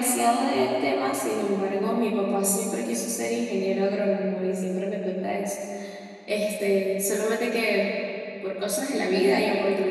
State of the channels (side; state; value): both; identical; correlation 1.00